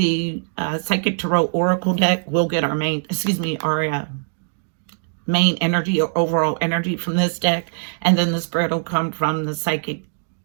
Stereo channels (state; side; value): silent; left; digital silence